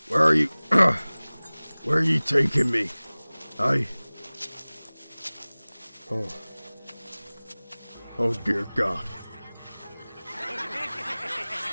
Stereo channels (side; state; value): both; inverted; correlation -1.00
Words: Where are you? Where are you taking me? Oh dear God.